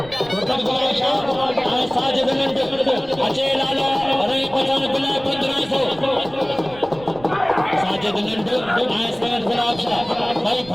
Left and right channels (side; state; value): right; noise; rumble, 20 dB below the sound